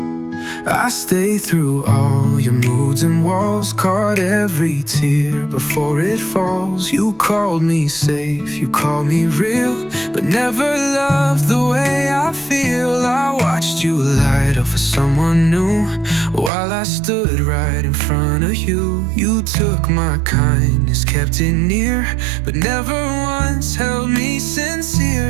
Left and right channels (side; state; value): left; drops out; at 16.5 s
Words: I stayed through all your moods and walls, caught every tear before it falls. You called me safe, you called me real, but never loved the way I feel. I watched you light up for someone new, while I stood right in front of you. You took my kindness, kept it near, but never once held me